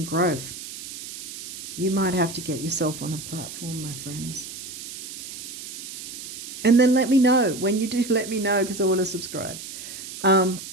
growth. You might have to get yourself on a platform, my friends. And then let me know. When you do, let me know, because I want to subscribe.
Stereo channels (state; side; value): noise; right; hiss, 10 dB below the sound